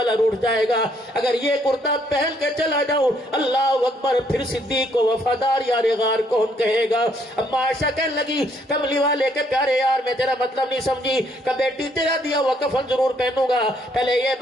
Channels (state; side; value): normal; both; correlation 0.69